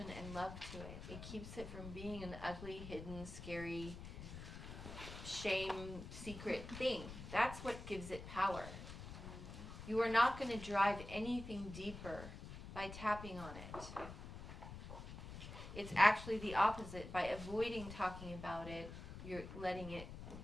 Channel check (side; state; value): left; noise; rumble, 10 dB below the sound